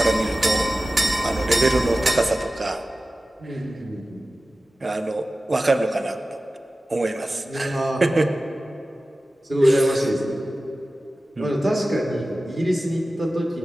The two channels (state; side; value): normal; both; correlation 0.95